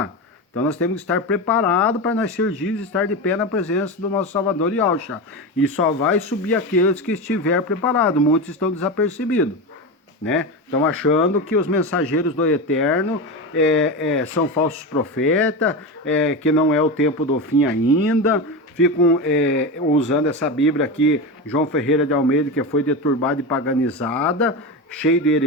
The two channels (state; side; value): normal; both; correlation 0.20